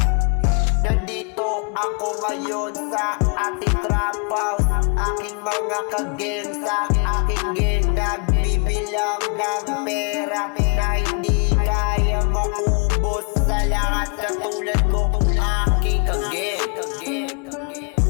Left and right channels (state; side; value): quieter; right; 36.0 dB